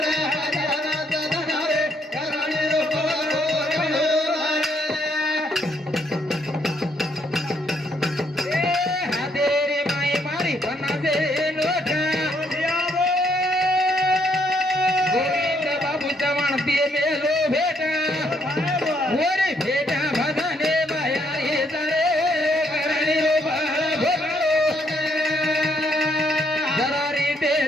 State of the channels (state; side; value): normal; both; correlation 0.71